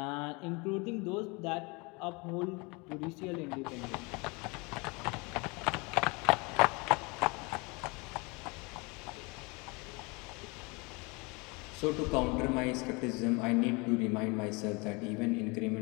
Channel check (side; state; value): right; quieter; 28.2 dB